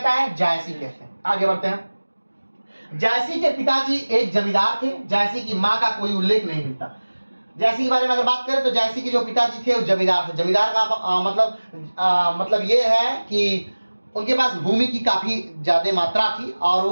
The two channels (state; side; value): inverted; both; correlation -1.00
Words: है, जैसी कहते हैं। आगे बढ़ते हैं। जैसी के पिताजी एक जमींदार थे, जैसी की माँ का कोई उल्लेख नहीं मिलता। जैसी के बारे में अगर बात करें तो जैसी के जो पिताजी थे वो जमींदार थे। जमींदार का मतलब ये है कि उनके पास भूमि की काफी ज्यादा मात्रा थी और